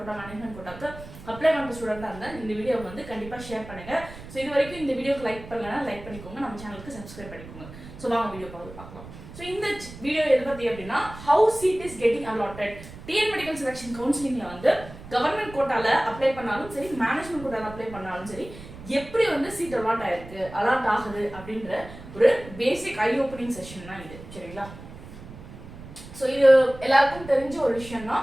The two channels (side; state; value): right; noise; rumble, 15 dB below the sound